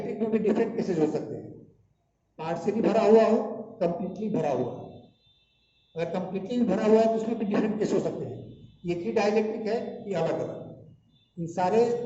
में भी डिफरेंट केसेज हो सकते हैं, पार्शियली भरा हुआ हो, कंप्लीटली भरा हुआ हो। अगर कंप्लीटली भरा हुआ है तो उसमें भी डिफरेंट केस हो सकते हैं, एक ही डाइलेक्ट्रिक है कि अलग अलग। इन सारे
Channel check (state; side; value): identical; both; correlation 1.00